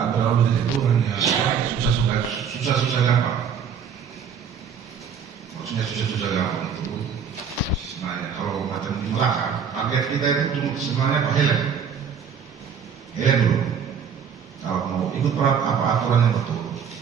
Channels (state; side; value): quieter; left; 7.1 dB